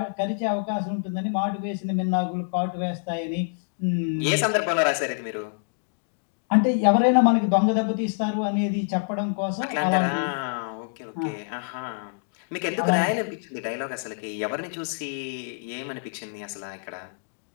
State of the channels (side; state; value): right; silent; digital silence